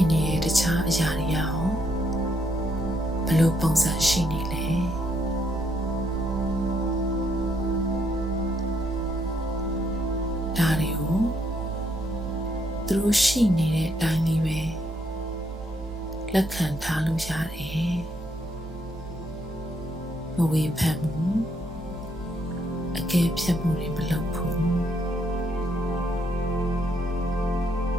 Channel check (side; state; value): both; normal; correlation 0.74